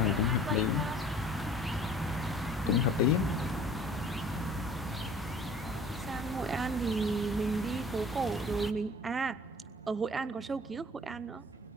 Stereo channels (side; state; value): both; normal; correlation 0.50